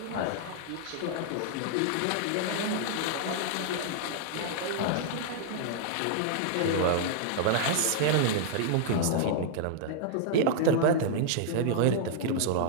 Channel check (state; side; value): different; both; correlation -0.01